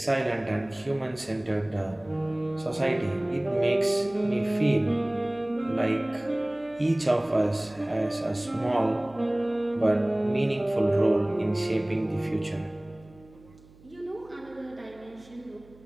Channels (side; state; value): right; noise; hum, 25 dB below the sound